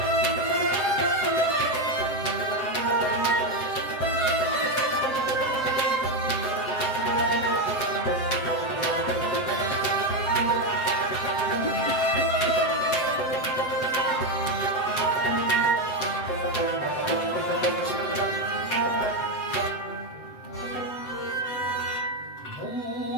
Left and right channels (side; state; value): right; late; 7.8 ms